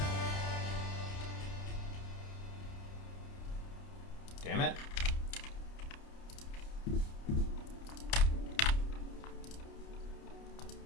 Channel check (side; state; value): right; late; 30 ms